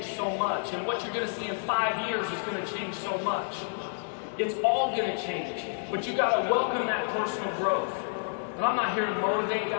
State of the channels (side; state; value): right; silent; digital silence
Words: so much, and what you're going to see in 5 years is going to change so much. It's all going to change, but you got to welcome that personal growth. And I'm not here to motivate you,